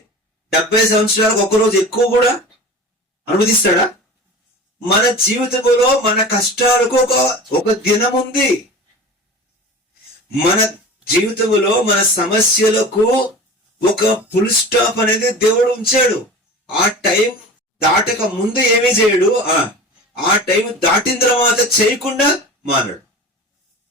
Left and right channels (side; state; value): both; normal; correlation 0.35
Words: 70 సంవత్సరాలకు ఒక్క రోజు ఎక్కువ కూడా అనుమతిస్తాడా? మన జీవితంలో మన కష్టాలకు ఒక దినం ఉంది. మన జీవితంలో మన సమస్యలకు ఒక ఫుల్ స్టాప్ అనేది దేవుడు ఉంచాడు. ఆ టైం దాటక ముందు ఏమీ చేయడు, ఆ టైం దాటిన తర్వాత చేయకుండా మానడు.